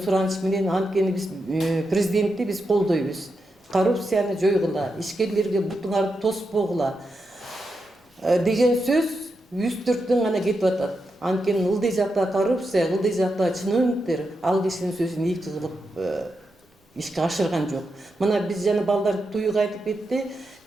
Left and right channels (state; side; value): normal; both; correlation 0.86